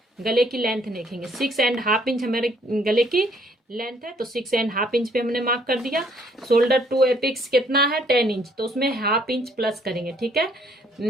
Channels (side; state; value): both; normal; correlation 0.64